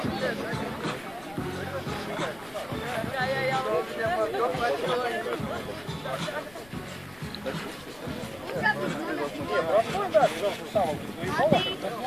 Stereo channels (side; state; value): left; noise; rumble, 23 dB below the sound